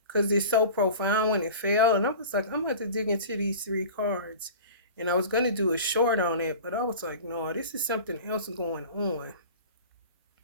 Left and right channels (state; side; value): inverted; both; correlation -0.37